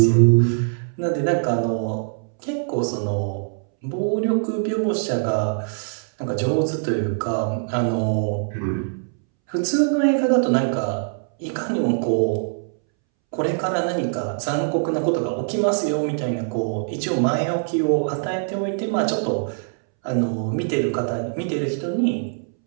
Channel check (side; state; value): left; silent; 64 dB below the other